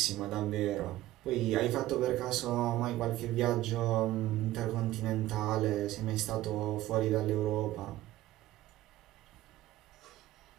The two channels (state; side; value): quieter; left; 15.5 dB